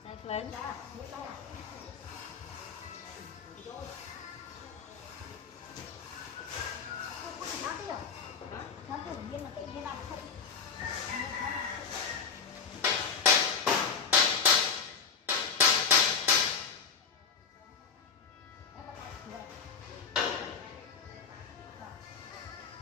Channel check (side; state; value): right; quieter; 5.9 dB